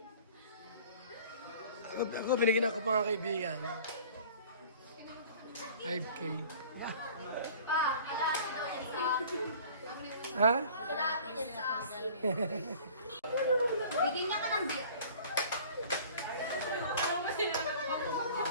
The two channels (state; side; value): inverted; both; correlation -0.47